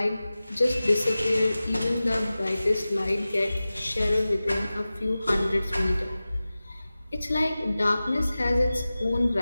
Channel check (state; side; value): inverted; both; correlation -0.96